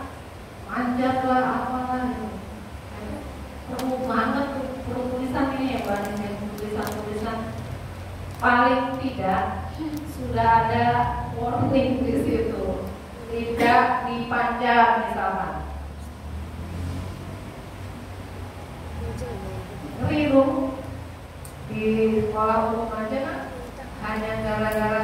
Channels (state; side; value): identical; both; correlation 1.00